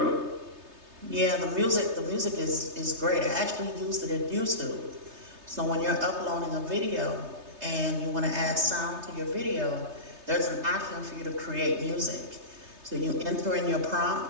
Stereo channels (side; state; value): left; late; 3.3 ms